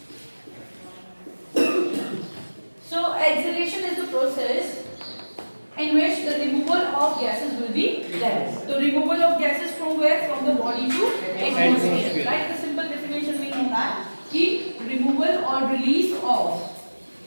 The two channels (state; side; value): inverted; both; correlation -1.00